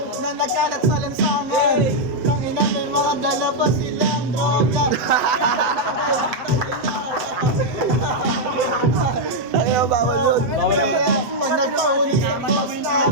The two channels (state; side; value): late; left; 7.6 ms